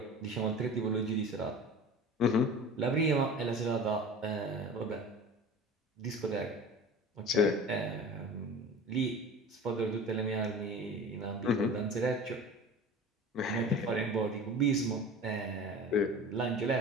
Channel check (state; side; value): normal; both; correlation 0.37